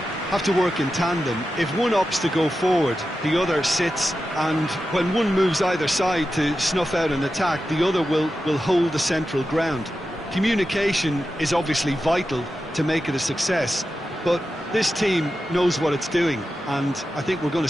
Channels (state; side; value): normal; both; correlation 0.91